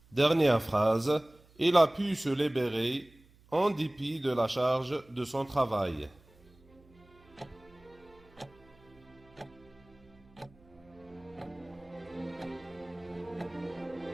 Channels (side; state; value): right; noise; hum, 28 dB below the sound